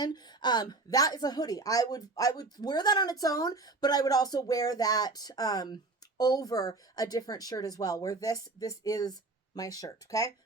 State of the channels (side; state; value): left; quieter; 3.4 dB